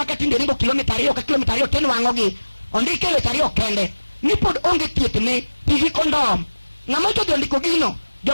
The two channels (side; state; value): both; inverted; correlation -1.00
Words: ringo kilomita 2 ka kilomita 2 tinwang'ogi ondike weche 2 kende ni pod onge thiethne pigi kondom ng'ama to ondiko gino